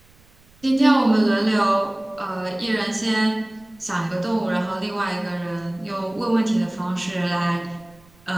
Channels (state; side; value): noise; right; rumble, 29 dB below the sound